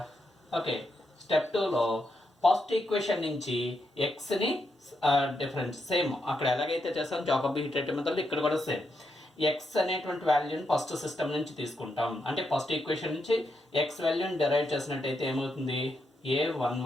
ఓకే, స్టెప్ 2లో ఫస్ట్ ఈక్వేషన్ నుంచి ఎక్స్ని డిఫరెన్స్ సేమ్ అక్కడ ఎలాగైతే చేస్తాం జాకోబి హీటరేటివ్ మెథడ్లో ఇక్కడ కూడా సేమ్ ఎక్స్ అనేటువంటి వాల్యూని ఫస్ట్ సిస్టమ్ నుంచి తీసుకుంటాం. అంటే ఫస్ట్ ఈక్వేషన్ నుంచి ఎక్స్ వాల్యూని డెరైవ్ చేసినట్టయితే ఏమవుతుంది?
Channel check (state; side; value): normal; both; correlation 0.82